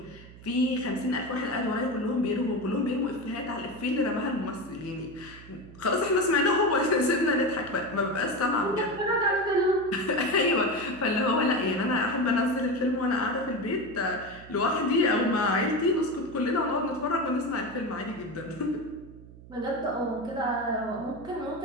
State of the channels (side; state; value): right; noise; hum, 19 dB below the sound